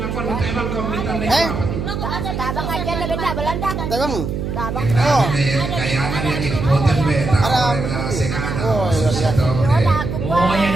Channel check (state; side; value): noise; right; hum, 4 dB below the sound